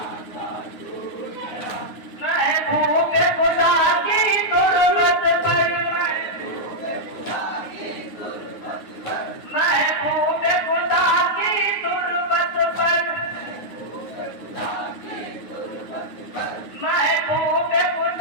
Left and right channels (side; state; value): right; late; 9.5 ms